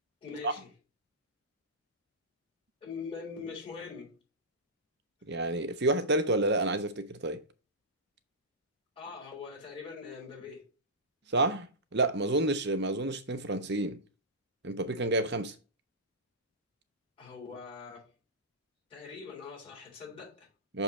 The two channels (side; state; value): both; normal; correlation -0.17